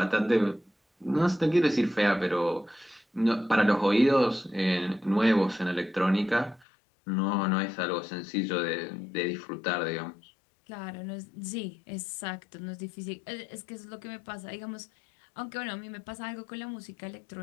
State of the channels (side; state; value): right; drops out; at 6.7 s